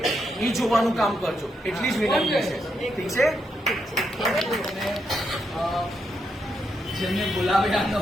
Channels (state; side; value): normal; both; correlation 0.81